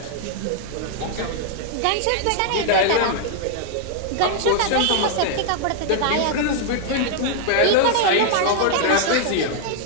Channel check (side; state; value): both; different; correlation -0.01